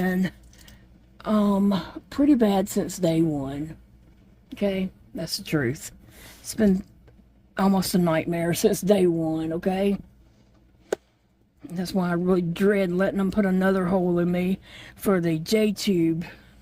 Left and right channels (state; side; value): identical; both; correlation 1.00